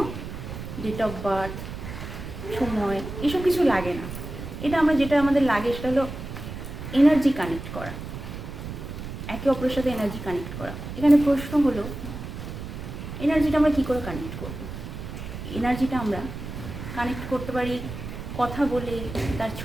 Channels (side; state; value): right; noise; rumble, 9 dB below the sound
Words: ডেট অফ বার্থ, সময়, এসব কিছু লাগে না। এটা যেটা আমাদের লাগে সেটা হলো এনার্জি কানেক্ট করা, একে অপরের সাথে এনার্জি কানেক্ট করা। এখানে প্রশ্ন হলো, এনার্জিটা আমরা কী করে কানেক্ট করব? এনার্জিটা আমরা কানেক্ট করতে পারি কথা বলে, তার